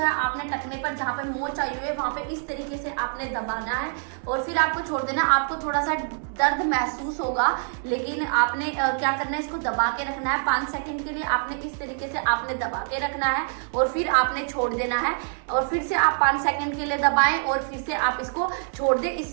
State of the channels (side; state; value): left; silent; digital silence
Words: आपने टखने पर जहाँ पे मोच आई हुई है वहां पे इस तरीके से आपने दबाना है और फिर आपको छोड़ देना। आपको थोड़ा सा दर्द महसूस होगा लेकिन आपने क्या करना है, इसको दबा के रखना है 5 सेकंड के लिए। आपने इस तरीके से आपने दबा के रखना है और फिर आपने छोड़ देना है और फिर से आप 5 सेकंड के लिए दबाएं और फिर से आप इसको छोड़ दें।